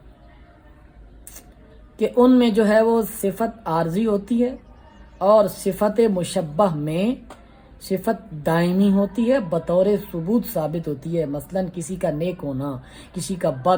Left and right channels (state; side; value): identical; both; correlation 1.00